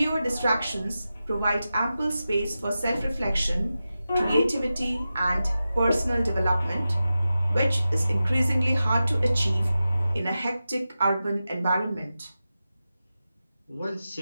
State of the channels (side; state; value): both; inverted; correlation -0.93